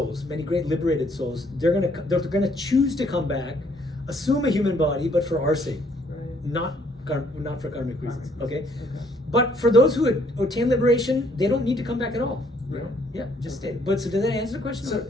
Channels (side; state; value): both; normal; correlation 0.66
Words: many great liberated souls, they're gonna choose to come back, assume a human body, but for our sake, not for karmic reasons. Okay. But for those who attain liberation, they don't need to come back at all. Right. Yeah, just stay. But so did that answer the question? So